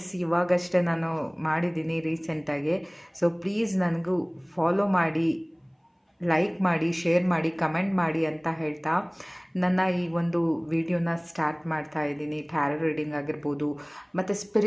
ಇವಾಗಷ್ಟೇ ನಾನು ಮಾಡಿದ್ದೀನಿ ರೀಸೆಂಟಾಗಿ. ಸೊ ಪ್ಲೀಸ್ ನನಗೂ ಫಾಲೋ ಮಾಡಿ, ಲೈಕ್ ಮಾಡಿ, ಶೇರ್ ಮಾಡಿ, ಕಮೆಂಟ್ ಮಾಡಿ ಅಂತ ಹೇಳ್ತಾ ನನ್ನ ಈ ಒಂದು ವಿಡಿಯೋನ ಸ್ಟಾರ್ಟ್ ಮಾಡ್ತಾ ಇದ್ದೀನಿ. ಟ್ಯಾರೋ ರೀಡಿಂಗ್ ಆಗಿರ್ಬೋದು ಮತ್ತು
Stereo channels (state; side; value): identical; both; correlation 1.00